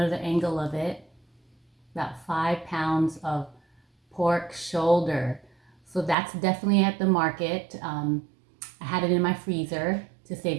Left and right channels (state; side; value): drops out; left; at 6.2 s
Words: angle of it. About 5 pounds of pork shoulder. So that's definitely at the market. I had it in my freezer to save